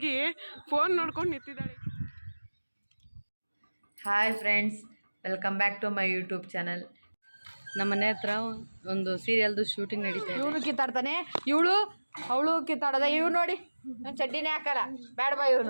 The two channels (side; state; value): both; inverted; correlation -1.00